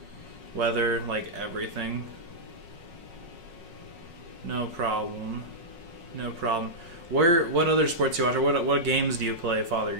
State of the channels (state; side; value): late; left; 5.5 ms